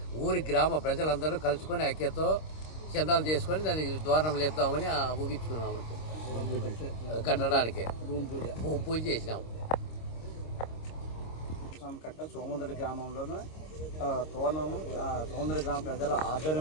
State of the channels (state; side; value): late; right; 26 ms